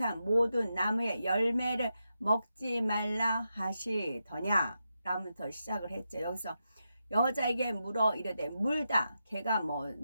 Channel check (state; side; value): inverted; both; correlation -0.87